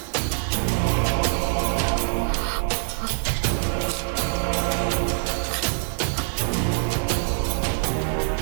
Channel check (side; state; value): left; silent; 62 dB below the other